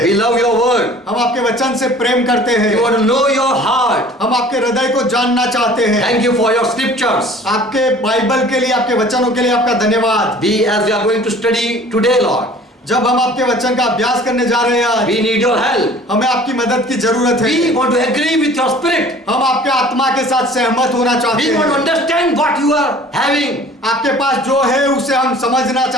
We love your word. हम आपके वचन से प्रेम करते हैं। We want to know your heart. हम आपके हृदय को जानना चाहते हैं। Thank you for your scriptures. आपके बाइबल के लिए, आपके वचनों के लिए आपका धन्यवाद। As we are going to study today, Lord, जब हम आपके वचन का अभ्यास करने जा रहे हैं, we need your help. हमें आपकी मदद की जरूरत है। We want to agree with your spirit. हम आपके आत्मा के साथ सहमत होना चाहते We want to हैं। understand what you are having. आपके पास जो है उसे हम समझना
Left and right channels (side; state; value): both; normal; correlation 0.48